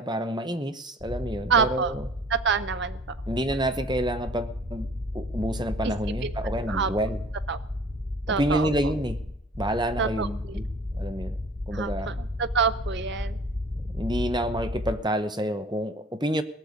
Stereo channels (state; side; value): normal; both; correlation 0.49